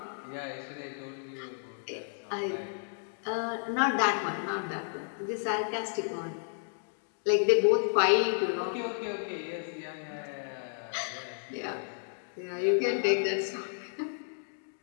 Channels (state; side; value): silent; right; digital silence